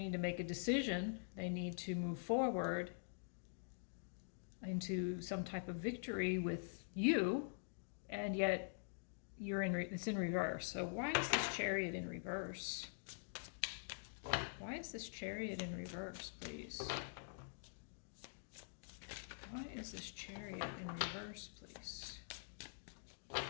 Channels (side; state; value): right; silent; digital silence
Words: to make a decision. They need to move forward into some type of victory with you, and yet it's in reverse. So why is this Chariot in reverse? Why is this Chariot in reverse, please? Why is this Chariot in reverse, please?